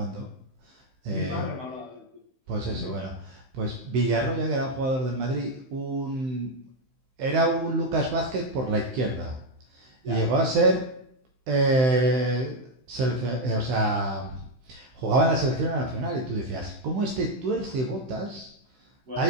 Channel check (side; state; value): left; late; 15 ms